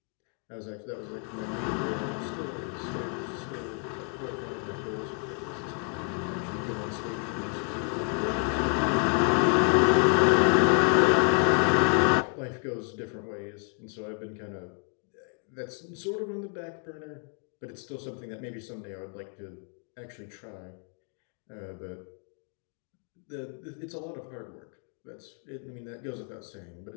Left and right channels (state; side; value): quieter; right; 37.9 dB